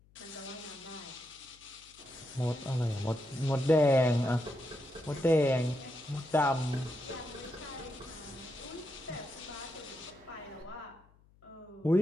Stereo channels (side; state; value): left; noise; hum, 29 dB below the sound